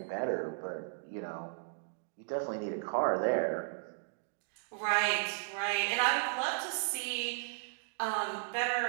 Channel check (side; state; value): left; silent; digital silence